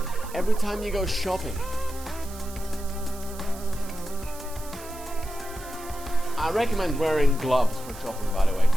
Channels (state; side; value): noise; right; hiss, 16 dB below the sound